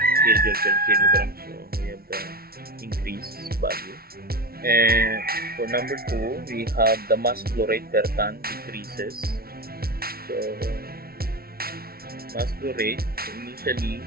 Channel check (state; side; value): late; left; 0.44 ms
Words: kilojoule per kilogram. So we have the increased value. And for number 2, we have the mass flow rate per ton decreases. So mass flow rate, so initially